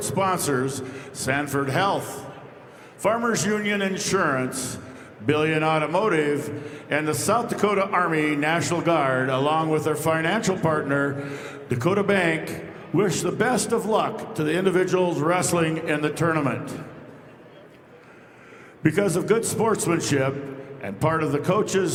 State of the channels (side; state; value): both; identical; correlation 1.00